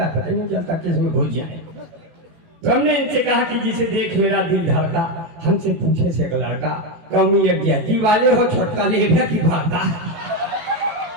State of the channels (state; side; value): late; left; 18 ms